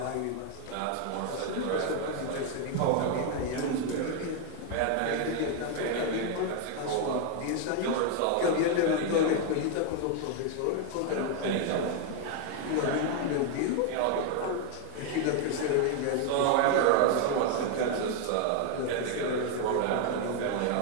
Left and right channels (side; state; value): both; different; correlation 0.00